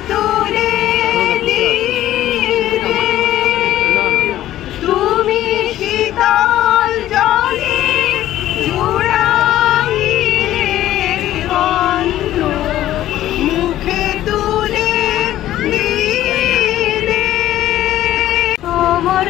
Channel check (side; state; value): right; quieter; 13.5 dB